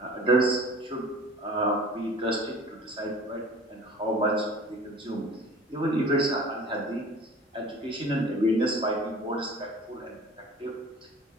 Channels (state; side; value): normal; both; correlation 0.44